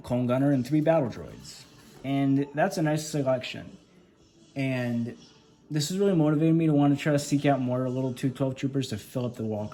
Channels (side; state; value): both; identical; correlation 1.00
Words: Clone Gunner, and 3 Battle Droids. And that's a nice selection. And this is really motivating me to want to try to seek out more little 212 Troopers to fill up the